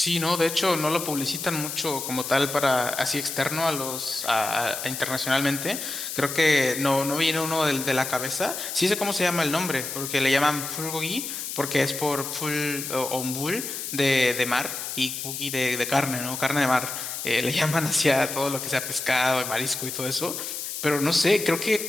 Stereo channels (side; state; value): left; noise; hiss, 6 dB below the sound